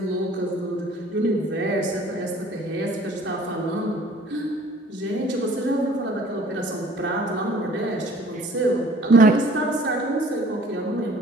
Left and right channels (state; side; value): normal; both; correlation 0.52